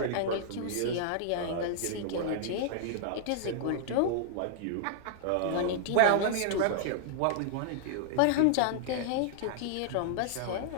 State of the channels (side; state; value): both; different; correlation -0.01